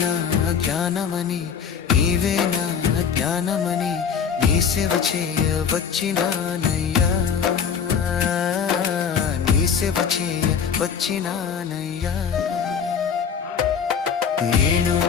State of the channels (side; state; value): right; quieter; 7.0 dB